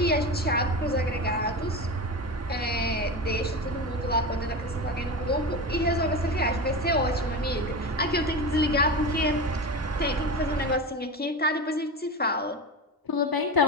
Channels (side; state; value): both; normal; correlation 0.24